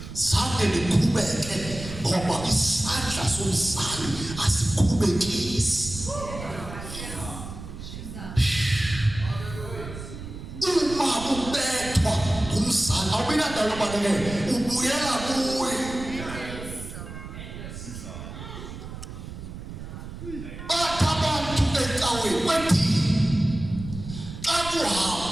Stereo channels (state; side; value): noise; right; rumble, 11 dB below the sound